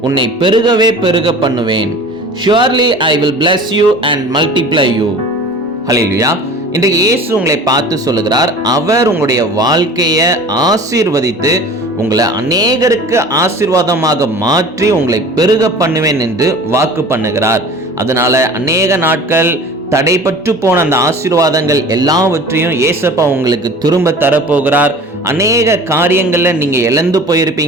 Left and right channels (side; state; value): both; normal; correlation 0.42